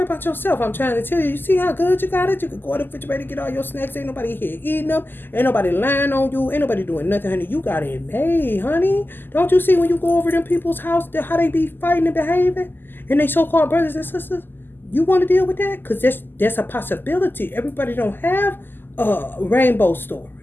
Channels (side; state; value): right; late; 0.094 ms